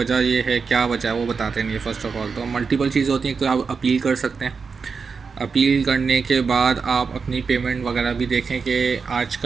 ये है, क्या वजह है वो बताते नहीं है। फ़र्स्ट ऑफ ऑल तो मल्टीपल चीज़ होती हैं। तो आप अपील कर सकते हैं। अपील करने के बाद आप अपनी पेमेंट वगैरह भी देखें कि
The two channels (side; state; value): left; quieter; 5.3 dB